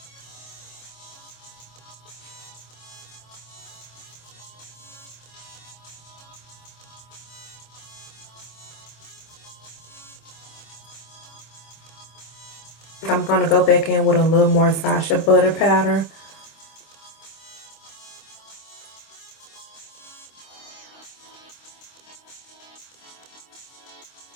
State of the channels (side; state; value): right; late; 25 ms